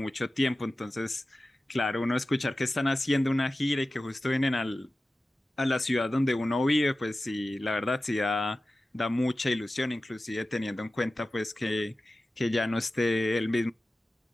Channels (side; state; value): both; normal; correlation 0.95